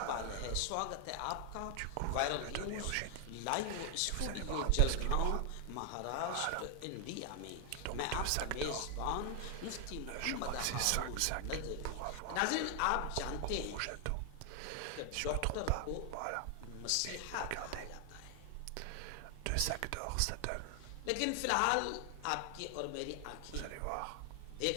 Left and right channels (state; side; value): different; both; correlation 0.00